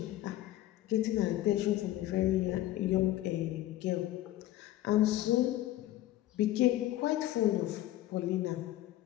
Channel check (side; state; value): right; quieter; 14.7 dB